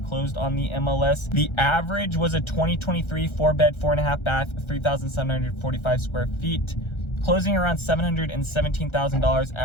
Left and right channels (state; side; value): late; right; 1.3 ms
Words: closed on the MLS. The average was a 2023 4-bed, 4.5 bath, 3,745 square feet, closing around $717,000